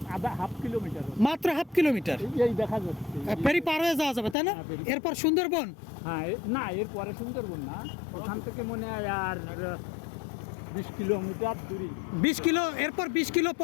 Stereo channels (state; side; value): drops out; right; at 4.4 s